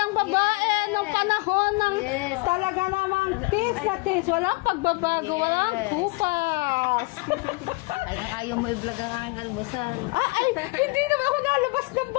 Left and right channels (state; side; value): quieter; right; 26.5 dB